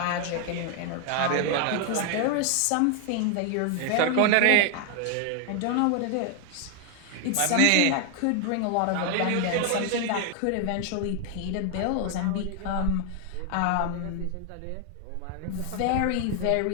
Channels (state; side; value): different; both; correlation 0.00